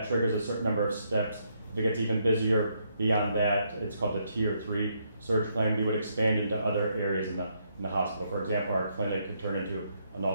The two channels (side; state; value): both; inverted; correlation -0.75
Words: triggers a certain number of steps. If it gets even busier beyond that, it's called the Tier 3 surge plan. We would expand into other areas in the hospital. For example, our clinic could turn into an